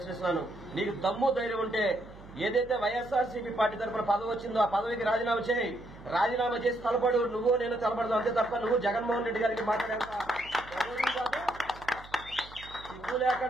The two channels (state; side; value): noise; right; hum, 19 dB below the sound